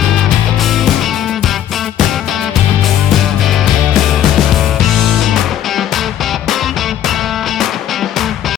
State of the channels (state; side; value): quieter; right; 10.8 dB